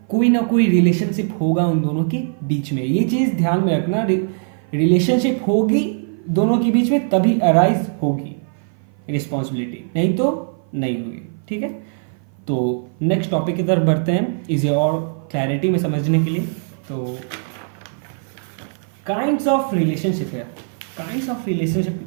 कोई ना कोई रिलेशनशिप होगा उन दोनों के बीच में। ये चीज ध्यान में रखना, रिलेशनशिप होगी दोनों के बीच में तभी अराइज होगी रिस्पॉन्सिबिलिटी, नहीं तो नहीं होगी। ठीक है, तो नेक्स्ट टॉपिक की तरफ बढ़ते हैं इसे और क्लैरिटी में समझने के लिए। तो काइंड्स ऑफ रिलेशनशिप है। काइंड्स ऑफ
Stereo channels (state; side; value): silent; left; 56 dB below the other